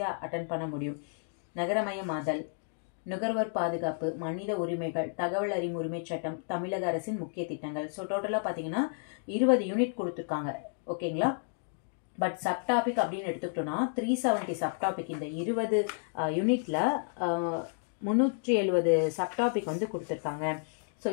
அட்டன் பண்ண முடியும். நகரமயமாதல், நுகர்வோர் பாதுகாப்பு, மனித உரிமைகள், தகவல் அறியும் உரிமை சட்டம், தமிழக அரசின் முக்கிய திட்டங்கள். ஸோ டோட்டலாக பார்த்தீங்கன்னா 20 யூனிட் கொடுத்துருக்காங்க. ஓகேங்களா? பட் சப்டாபிக் அப்படின்னு எடுத்துக்கிட்டோம்னா 370 சப்டாபிக். இந்த 20 யூனிட்ல 370 சப்டாபிக் வந்து கொடுத்துருக்காங்க. ஸோ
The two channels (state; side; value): silent; right; digital silence